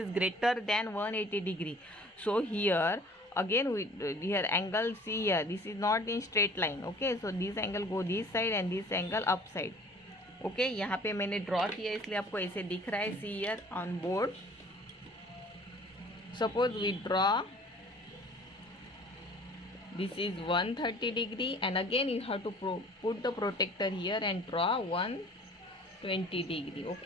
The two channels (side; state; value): both; normal; correlation 0.50